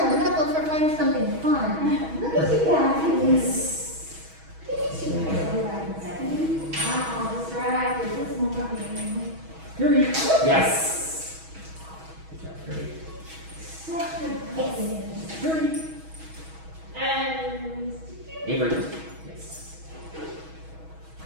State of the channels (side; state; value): left; late; 6.2 ms